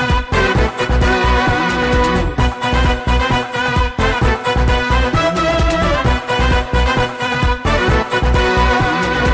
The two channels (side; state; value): both; identical; correlation 1.00